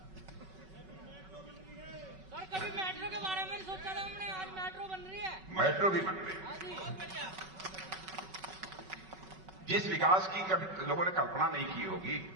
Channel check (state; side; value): late; left; 5.3 ms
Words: सर, कभी मेट्रो के बारे में सोचा था हमने, आज मेट्रो बन रही है। मेट्रो भी बन रही है। जिस विकास की कभी लोगों ने कल्पना नहीं की होगी,